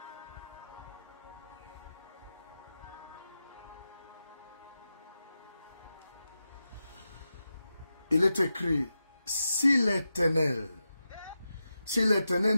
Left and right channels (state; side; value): inverted; both; correlation -0.90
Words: Il est écrit, si l'Éternel